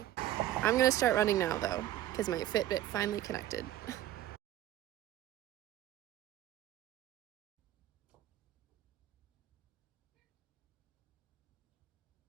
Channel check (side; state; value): left; quieter; 13.4 dB